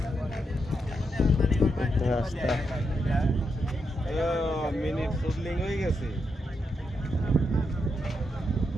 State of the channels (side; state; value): both; normal; correlation 0.83